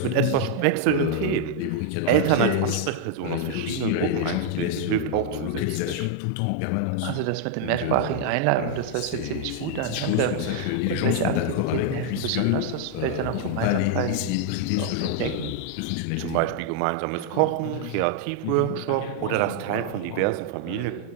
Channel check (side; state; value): both; different; correlation 0.00